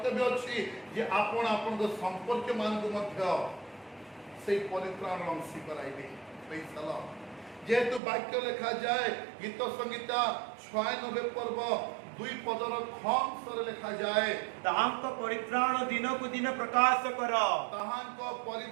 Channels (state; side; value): drops out; left; at 8.0 s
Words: अछि जे आपण आपण को संपर्क मान को मध्य से परित्राण अंशी कराइबे प्रेज द लॉर्ड जेतु वाक्य लिखा जाए गीत संगीता 96 पर्व 2 पदर खंस रे लिखा जाए ताहांक परित्राण दिन को दिन प्रकाश कर ताहांक